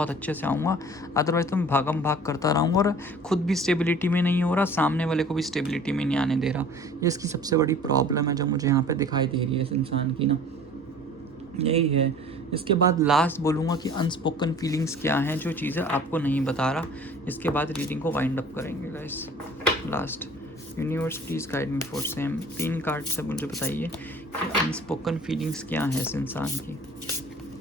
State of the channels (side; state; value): both; normal; correlation 0.46